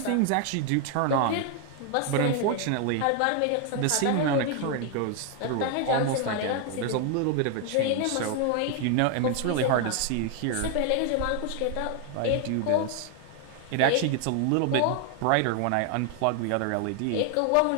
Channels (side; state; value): both; different; correlation 0.00